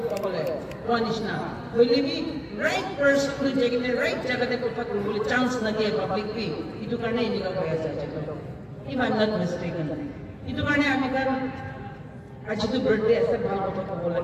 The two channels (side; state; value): both; identical; correlation 1.00